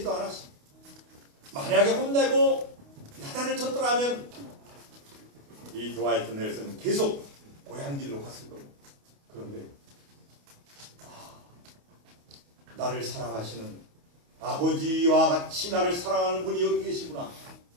않았어. 만약에 혼내고 야단을 쳤더라면 이 드와이트 넬슨은 계속 고향길로 갔을 겁니다. 그런데 나를 사랑하시는 아버지와 같이 나를 사랑하는 분이 여기 계시구나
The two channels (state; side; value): late; left; 28 ms